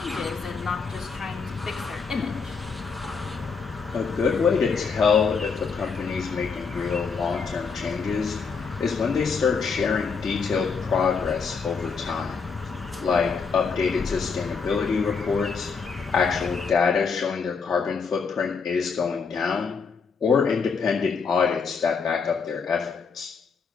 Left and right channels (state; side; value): quieter; right; 5.3 dB